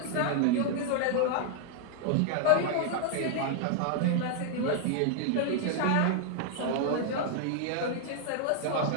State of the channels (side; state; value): both; different; correlation -0.01